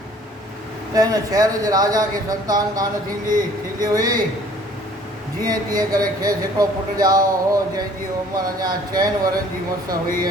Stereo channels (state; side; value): normal; both; correlation 0.54